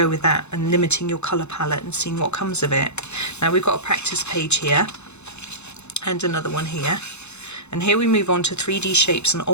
with that and limiting your colour palette and seeing what comes of it. Now we've got a practice page here and another one here, and here we move on to 3D shapes and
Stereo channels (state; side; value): late; right; 0.81 ms